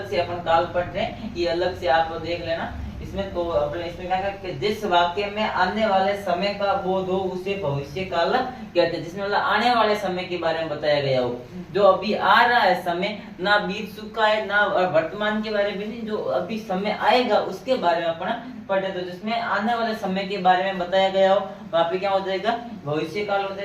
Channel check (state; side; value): identical; both; correlation 1.00